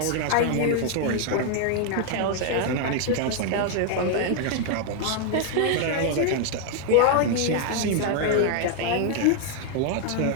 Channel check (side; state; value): both; different; correlation 0.00